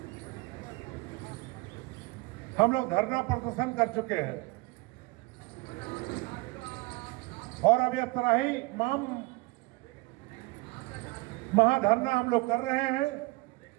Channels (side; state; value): left; quieter; 23.4 dB